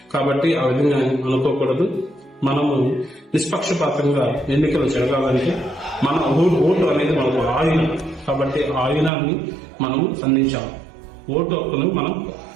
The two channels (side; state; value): left; drops out; at 9.1 s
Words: కాబట్టి ఆ విధంగా అనుకోకూడదు. మనము నిష్పక్షపాతంగా ఎన్నికలు జరగాలంటే మన ఓటు అనేది మనకు ఆయుధం. కాబట్టి ఆ ఆయుధాన్ని మనము అందించాలి. ఓటు హక్కును మనం